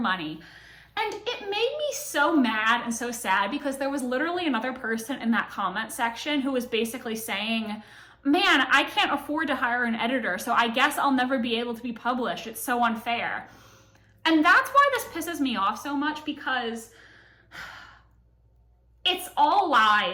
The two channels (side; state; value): both; identical; correlation 1.00